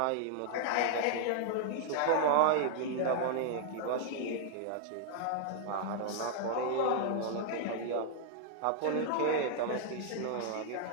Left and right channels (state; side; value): different; both; correlation -0.01